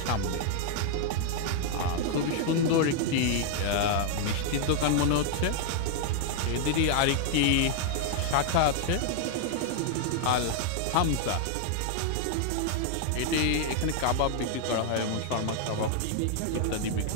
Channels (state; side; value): different; both; correlation 0.00